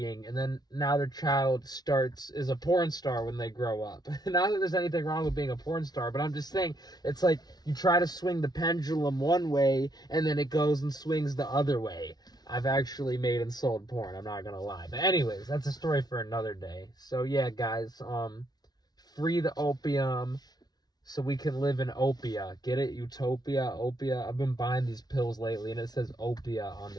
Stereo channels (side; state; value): right; late; 0.19 ms